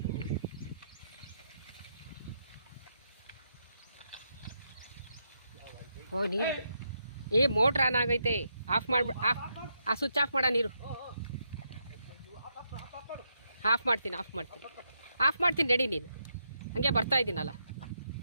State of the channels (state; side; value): inverted; both; correlation -0.80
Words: ಓ ನೀರು ಮೋಟ್ರ್ ಆನ್ ಆಗೈತೆ. ಆಫ್ ಮಾಡ್ಬಿಡ. ಆ ಸ್ವಿಚ್ ಆಫ್ ಮಾಡ. ನೀರು ಆಫ್ ಮಾಡ್ತೀನಿ ರೆಡಿ. ನೀನು ಹಂಗೆ ಬರ್ತಾ ಇದ್ದೀನಲ್ಲ.